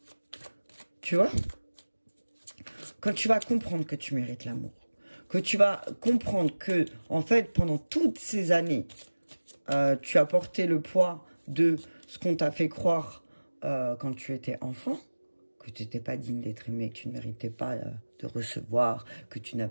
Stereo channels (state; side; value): inverted; both; correlation -1.00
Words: Tu vois? Quand tu vas comprendre que tu mérites l'amour, que tu vas comprendre que, en fait, pendant toutes ces années, tu as porté le poids de ce qu'on t'a fait croire quand tu étais enfant, que tu n'étais pas digne d'être aimé, que tu ne méritais pas de recevoir, que tu